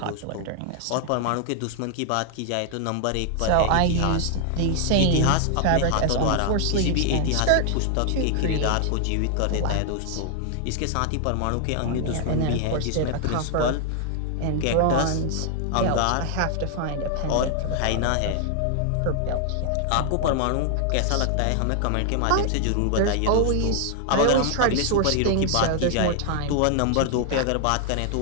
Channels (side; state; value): both; different; correlation 0.00